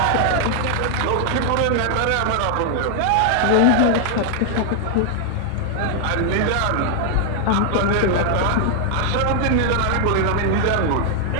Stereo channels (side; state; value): both; different; correlation 0.00